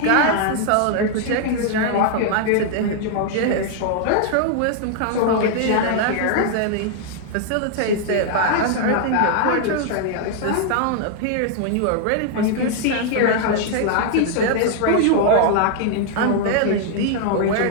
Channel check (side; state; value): both; different; correlation 0.00